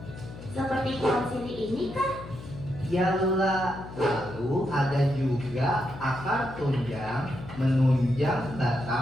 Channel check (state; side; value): noise; left; hum, 13 dB below the sound